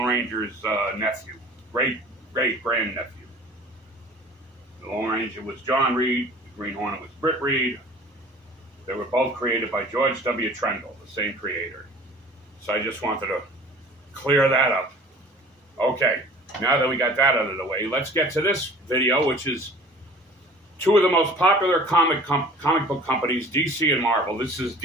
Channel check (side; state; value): both; normal; correlation 0.46